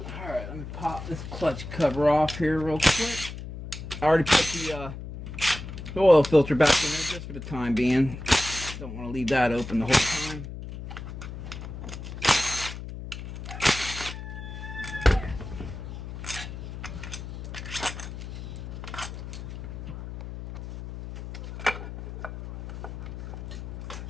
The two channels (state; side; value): noise; left; hum, 9 dB below the sound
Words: Alright, let me pop this clutch cover off here real quick. I already put the oil filter back in there just for the time being. Don't want to leave that open the whole time.